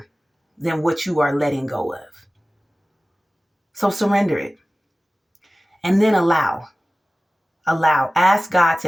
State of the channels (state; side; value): normal; both; correlation 0.96